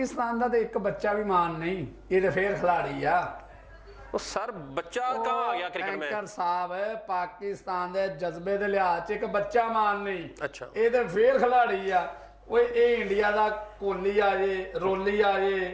का तो एक बच्चा भी मान नहीं, ये तो फिर खिलाड़ी आ। वो सर बच्चा कहाँ आ गया क्रिकेट में? एंकर साहब पाकिस्तान दे जज्बे दे लिहाज च एक बच्चा मान नहीं। अच्छा, ये तो फिर खिलाड़ी आ। ओए ये इंडिया दा कोहली आ जे, रोली आ जे,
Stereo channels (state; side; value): identical; both; correlation 1.00